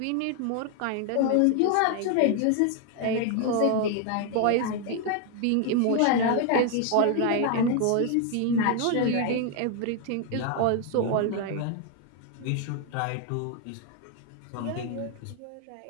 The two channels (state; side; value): different; both; correlation 0.00